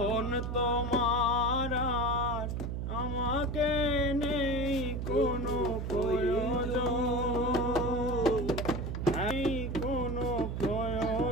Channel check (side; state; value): right; noise; hum, 3 dB below the sound